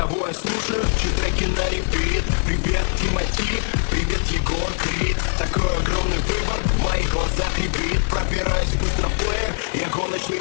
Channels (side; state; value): right; silent; digital silence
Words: я слушаю, чьи треки на репит. Привет, Тимати, привет, Егор Крид. Такой огромный выбор, в моих глазах рябит. Пробираюсь быстро в плеер, я гоночный